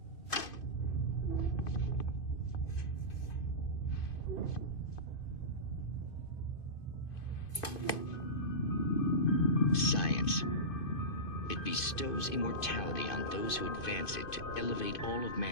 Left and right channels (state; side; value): late; right; 2.5 ms